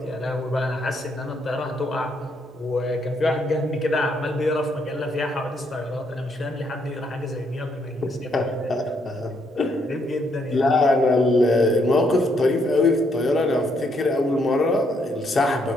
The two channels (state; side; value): normal; both; correlation 0.73